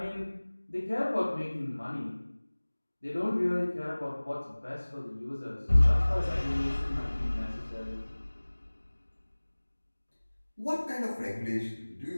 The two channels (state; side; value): inverted; both; correlation -1.00